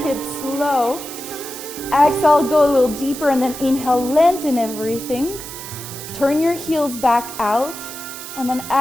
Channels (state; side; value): noise; right; hiss, 11 dB below the sound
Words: low. Exhale, go a little deeper, and then inhale, lengthen everything. Turn your heels back out, and then